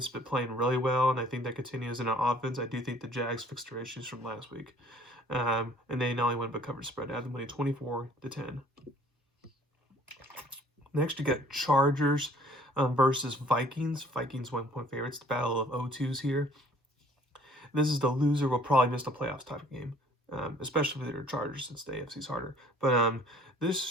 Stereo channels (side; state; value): both; normal; correlation 0.56